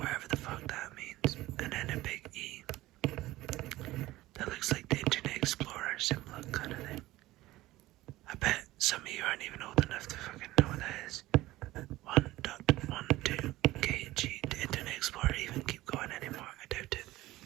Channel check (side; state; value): left; quieter; 17.3 dB